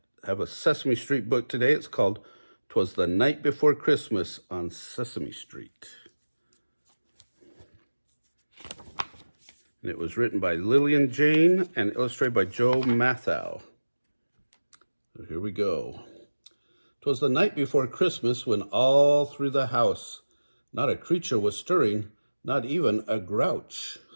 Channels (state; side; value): inverted; both; correlation -1.00